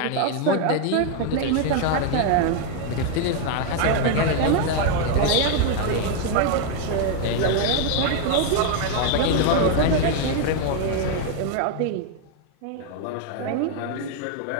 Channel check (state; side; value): different; both; correlation 0.00